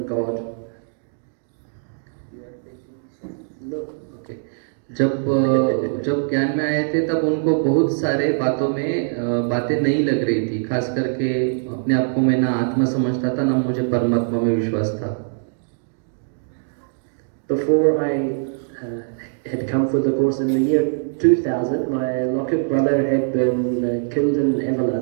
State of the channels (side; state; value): left; silent; digital silence